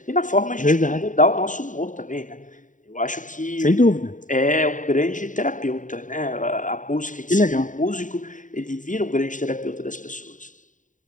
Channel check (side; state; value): right; late; 0.37 ms